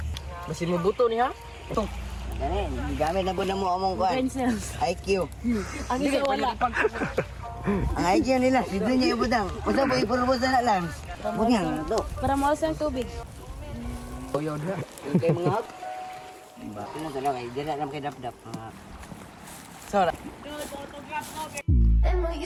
Masih mo buto ni ha? Ito. Dani, gamit na po na mo among kuan. Pencils. IQ. Ang isa wala. Ang IQ nila, sidlo niya ibutang. Basta po ipurubos na lang. Bunyang to. Para mawas ang tubig. Uyaw na. Yung kay mga hap. Bakit na talaga, hindi na lang kay dap-dap. Sora. And will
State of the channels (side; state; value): both; identical; correlation 1.00